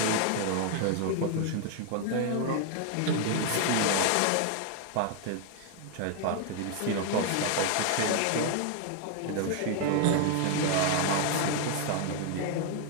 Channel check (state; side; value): different; both; correlation 0.00